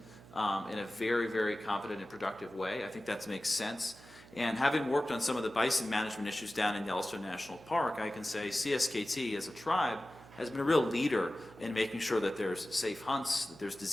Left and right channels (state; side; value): noise; right; hum, 21 dB below the sound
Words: in a very, very competent and productive way. I think that makes sense. And having worked on some of the bison management issues down in Yellowstone National Park, I can say CSKT as a tribe has been a real leader in making sure that there's safe hunts, that there's